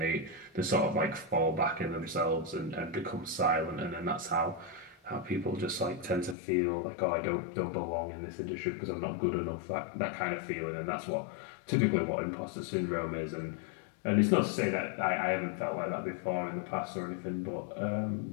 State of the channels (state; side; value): drops out; right; at 6.4 s